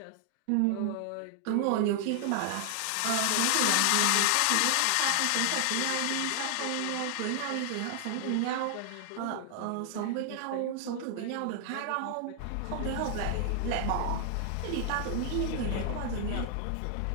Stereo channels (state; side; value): different; both; correlation 0.00